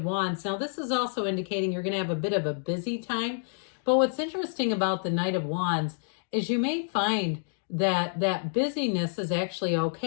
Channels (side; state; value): right; silent; digital silence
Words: Wands. Now, this is also indicating you're going to have a bit of a busy time. But what's interesting about the Knight of Wands is you may find that busyness is actually